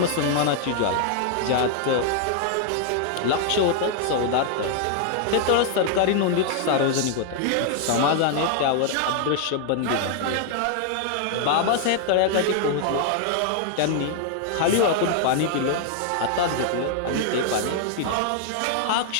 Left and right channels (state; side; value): different; both; correlation 0.00